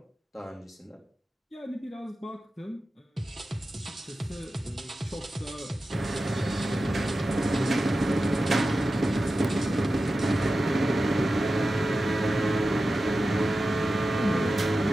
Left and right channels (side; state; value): both; normal; correlation 0.93